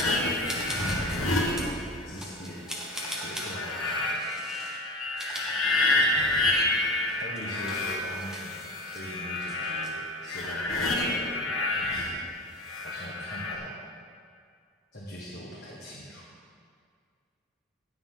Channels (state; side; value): normal; both; correlation 0.30